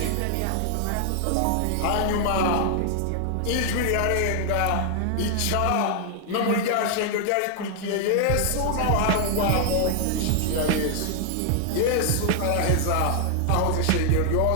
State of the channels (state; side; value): different; both; correlation 0.00